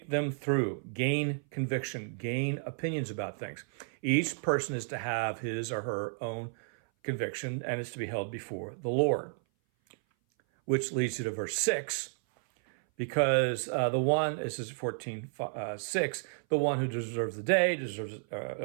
them through, gain conviction, gain opinions about things. Each person is to have his or her own conviction and is to be held before the Lord. Which leads you to verse 6, because this is 14:6, the one who deserves the day,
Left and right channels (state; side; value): silent; left; 56 dB below the other